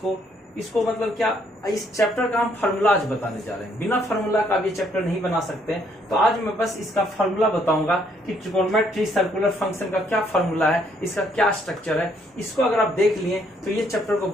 इसको मतलब क्या, इस चैप्टर का हम फार्मूला आज बताने जा रहे हैं। बिना फार्मूला का भी चैप्टर नहीं बना सकते हैं, तो आज मैं बस इसका फार्मूला बताऊंगा कि ट्रिगोनोमेट्री सर्कुलर फंक्शन का क्या फार्मूला है, इसका क्या स्ट्रक्चर है। इसको अगर आप देख लिए तो ये चैप्टर को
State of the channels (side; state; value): both; normal; correlation 0.68